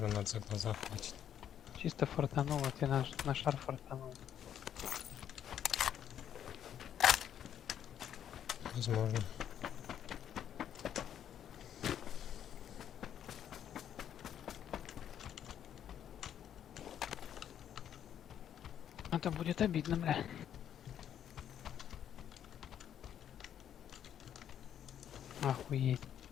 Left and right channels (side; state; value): right; quieter; 9.7 dB